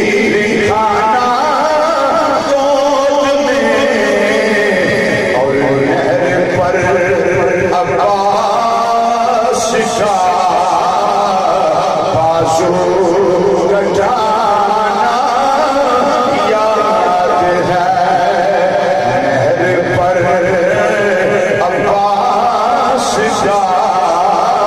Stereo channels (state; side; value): identical; both; correlation 1.00